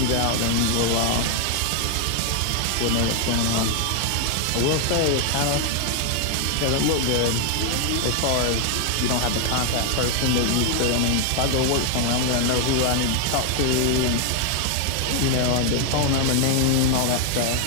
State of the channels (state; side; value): different; both; correlation 0.00